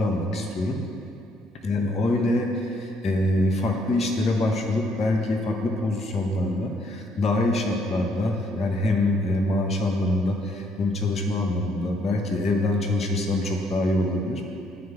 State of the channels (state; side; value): normal; both; correlation 0.69